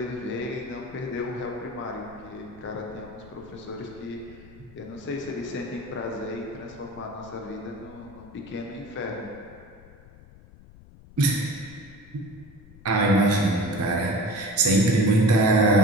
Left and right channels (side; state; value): left; noise; rumble, 21 dB below the sound